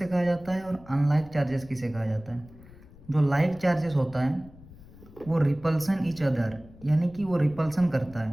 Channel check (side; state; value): left; noise; rumble, 21 dB below the sound